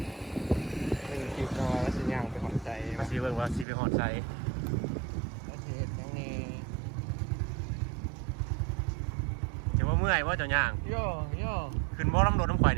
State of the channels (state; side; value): drops out; left; at 3.7 s